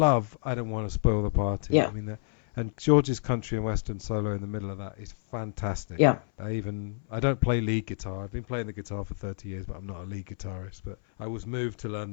I Don't Want to Spoil the Party. Yeah. I mean, and George's country and western solo in the middle of that is fantastic. Yeah. I don't play lead guitar. I've been playing the guitar for 30 years, but I'm not a lead guitarist. But I was moved to learn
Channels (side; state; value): right; silent; 58 dB below the other